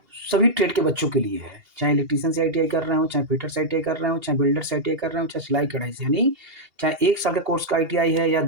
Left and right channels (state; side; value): late; left; 2.8 ms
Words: सभी ट्रेड के बच्चों के लिए है, चाहे इलेक्ट्रीशियन से आईटीआई कर रहे हो, चाहे फिटर से आईटीआई कर रहे हो, चाहे बिल्डर से आईटीआई कर रहे हो, चाहे सिलाई कढ़ाई से, यानी चाहे 1 साल के कोर्स का आईटीआई है या